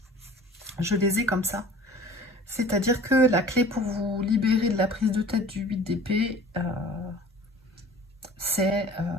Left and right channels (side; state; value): both; normal; correlation 0.45